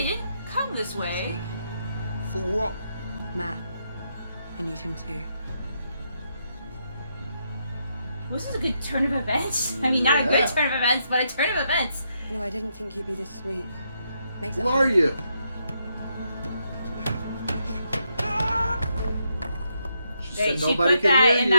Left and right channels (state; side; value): inverted; both; correlation -0.79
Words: didn't come this way. For what? Matt, I need him too. Well, this is a good turn of events. I mean, not a good turn of events, but a turn of events. No, I didn't think you'd be this sweet. Makes it Who are hard. you? She put that in